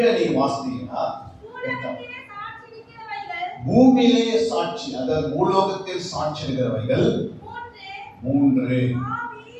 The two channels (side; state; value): both; identical; correlation 1.00